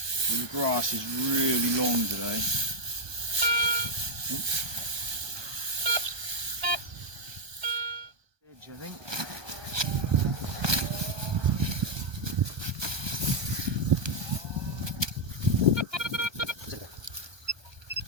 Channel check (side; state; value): left; late; 1.2 ms